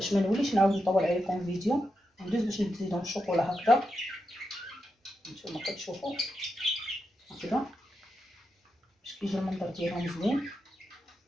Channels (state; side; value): normal; both; correlation 0.86